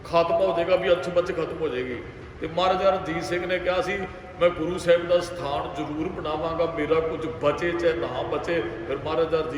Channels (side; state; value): both; identical; correlation 1.00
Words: ਖਾਤਮਾ ਹੋ ਜਾਏਗਾ, ਵੀ ਅੱਛ ਬੱਚ ਖਤਮ ਹੋ ਜਾਏਗੀ। ਤੇ ਮਹਾਰਾਜਾ ਰਣਜੀਤ ਸਿੰਘ ਨੇ ਕਿਹਾ ਸੀ ਮੈਂ ਗੁਰੂ ਸਾਹਿਬ ਦਾ ਸਥਾਨ ਜ਼ਰੂਰ ਬਣਾਵਾਂਗਾ, ਮੇਰਾ ਕੁਝ ਬਚੇ ਚਾਹੇ ਨਾ ਬਚੇ। ਫਿਰ ਮਹਾਰਾਜਾ